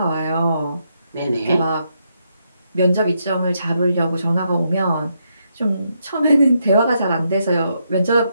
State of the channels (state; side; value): inverted; both; correlation -0.79